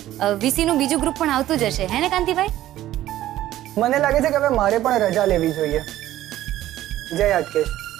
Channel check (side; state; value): left; quieter; 13.9 dB